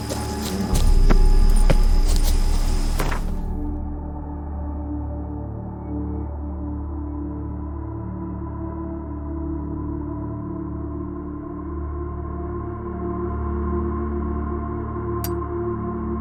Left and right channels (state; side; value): identical; both; correlation 1.00